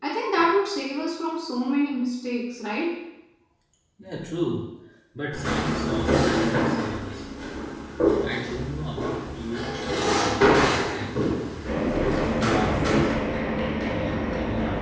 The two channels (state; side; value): identical; both; correlation 1.00